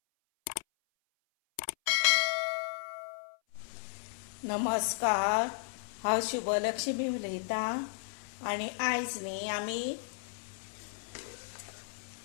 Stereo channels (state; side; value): silent; right; 55 dB below the other